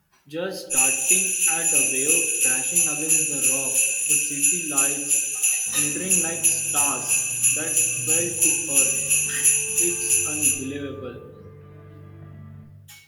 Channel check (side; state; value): both; identical; correlation 1.00